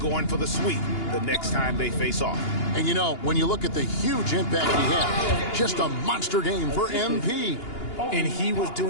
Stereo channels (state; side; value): late; right; 2.9 ms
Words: for the sweep the next time they face off. And you know, when you look at the huge impact he had, just a monster game for MP. And he was